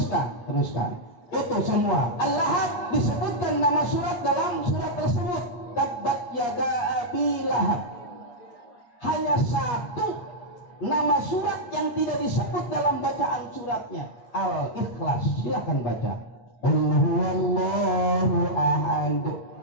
Itu semua. Al-Lahab disebutkan nama surat dalam surat tersebut. Tabbat yada abi lahab. Hanya satu nama surat yang tidak disebut dalam bacaan suratnya, Al-Ikhlas. Silakan baca. Qul huwallahu ahad,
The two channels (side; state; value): right; late; 8.4 ms